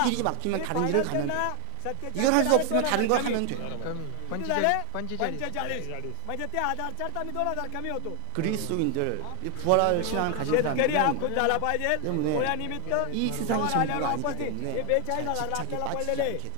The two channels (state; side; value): different; both; correlation 0.00